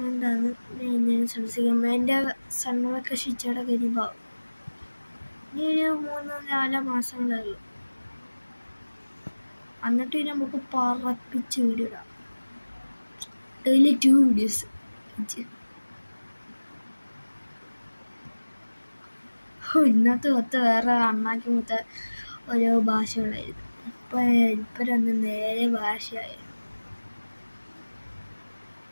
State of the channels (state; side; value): inverted; both; correlation -1.00